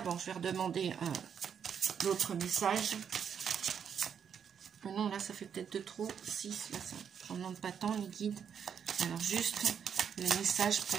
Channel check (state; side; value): quieter; left; 7.7 dB